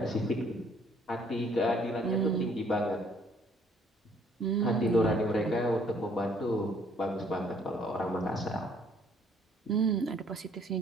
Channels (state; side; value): normal; both; correlation 0.62